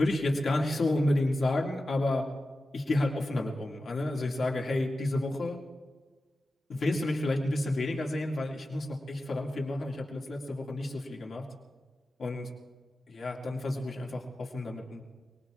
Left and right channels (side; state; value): both; normal; correlation 0.93